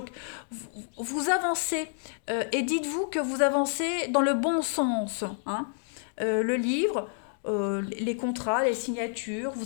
vous avancez et dites-vous que vous avancez dans le bon sens. Hein. Le livre, les contrats, les signatures,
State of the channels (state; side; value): silent; right; 59 dB below the other